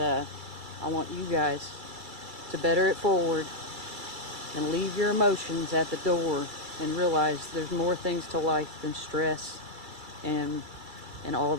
want you guys to better it forward and leave your emotions at the door and realize there's more things to life than stress and all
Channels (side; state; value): left; late; 2.3 ms